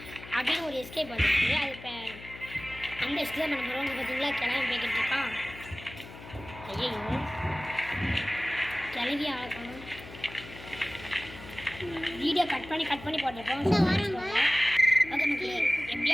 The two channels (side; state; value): left; noise; hum, 15 dB below the sound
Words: அப்படின்னு ஒரு எஸ்கேப் வந்துருக்கு. அது இப்போ அந்த எஸ்கேப் பண்ண போகிறோம். இங்கே பார்த்தீங்களா கிளம்பி போய்கிட்டு இருக்கான். ஐயோ கிளவி ஆகணும். வீடியோ கட் பண்ணி போட்டிருக்கோம். ஓகே மக்களே,